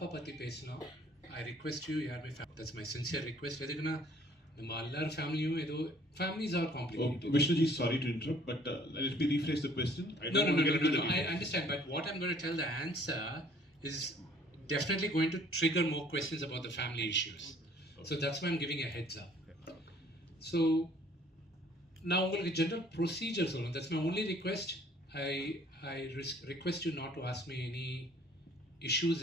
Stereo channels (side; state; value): both; normal; correlation 0.57